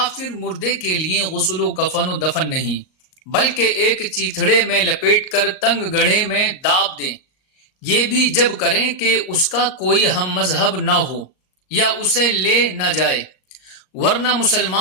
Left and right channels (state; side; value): late; right; 38 ms